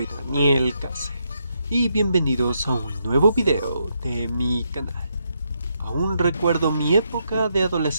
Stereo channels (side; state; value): both; inverted; correlation -0.79